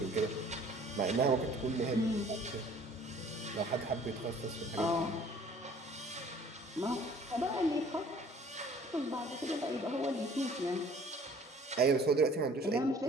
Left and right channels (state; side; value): normal; both; correlation 0.52